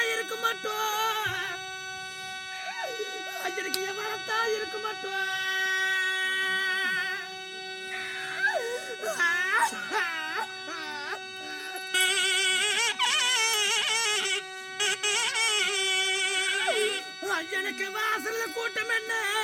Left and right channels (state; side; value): identical; both; correlation 1.00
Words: இருக்க மாட்டோம் எனக்கு எவளத்தா இருக்க மாட்டோம் எனக்கு வாசல்ல கூட்டம் என்ன